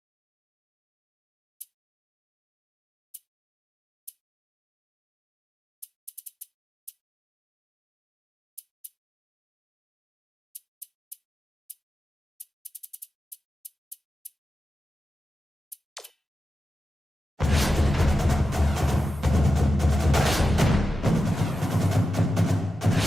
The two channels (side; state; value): both; normal; correlation 0.91